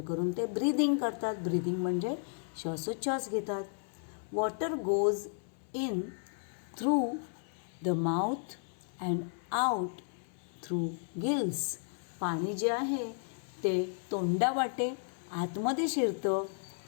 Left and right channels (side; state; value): right; silent; 55 dB below the other